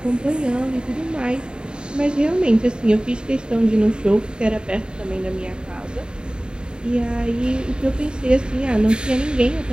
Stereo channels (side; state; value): left; late; 0.049 ms